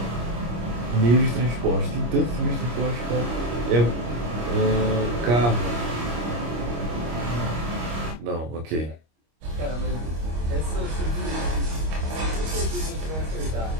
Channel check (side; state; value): left; late; 25 ms